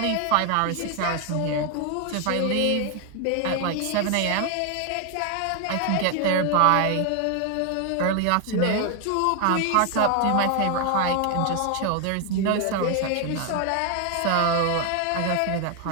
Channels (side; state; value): both; different; correlation 0.01